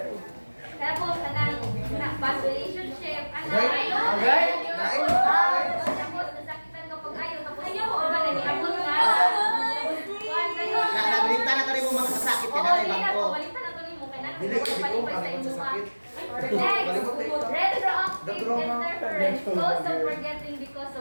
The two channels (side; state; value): both; inverted; correlation -1.00